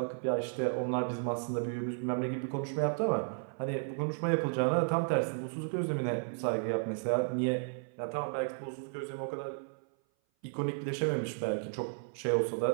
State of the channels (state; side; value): silent; left; 55 dB below the other